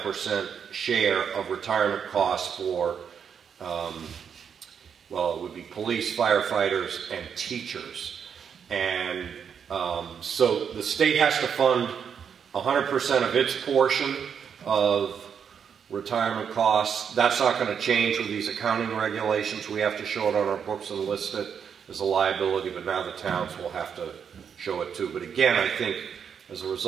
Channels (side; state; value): left; quieter; 7.3 dB